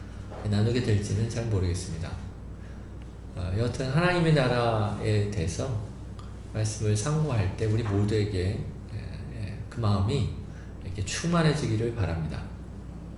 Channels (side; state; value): both; identical; correlation 1.00